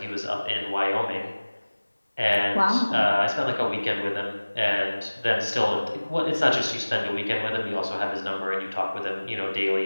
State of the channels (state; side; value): inverted; both; correlation -1.00